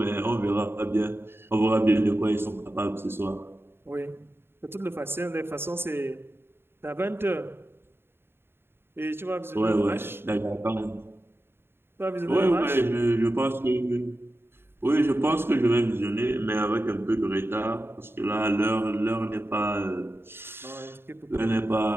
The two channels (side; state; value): left; late; 0.11 ms